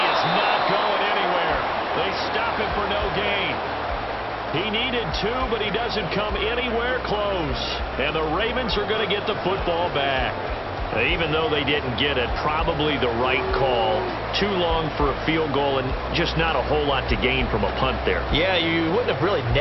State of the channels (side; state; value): both; identical; correlation 1.00